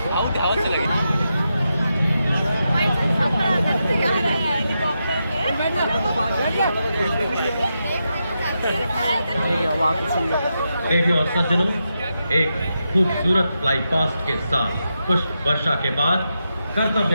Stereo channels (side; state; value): both; inverted; correlation -0.86